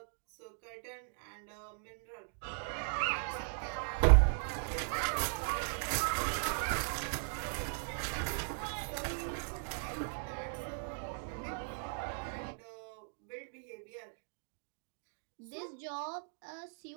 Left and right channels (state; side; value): silent; left; digital silence